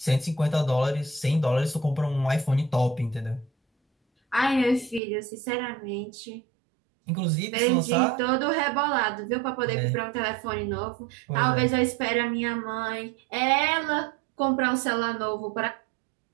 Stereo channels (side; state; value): left; drops out; at 5.0 s